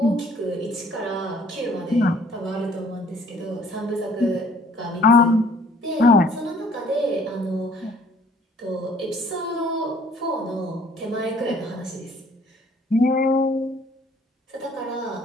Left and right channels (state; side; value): normal; both; correlation 0.58